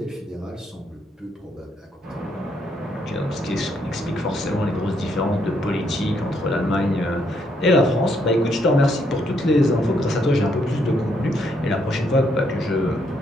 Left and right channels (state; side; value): normal; both; correlation 0.74